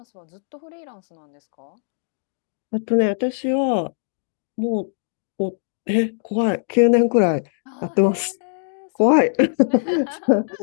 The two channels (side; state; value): right; silent; digital silence